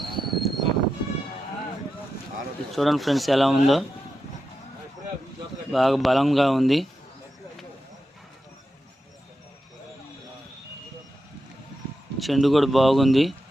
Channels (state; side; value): normal; both; correlation 0.88